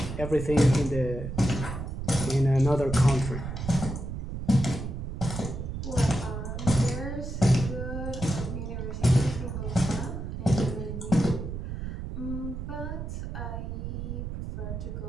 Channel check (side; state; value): right; noise; rumble, 6 dB below the sound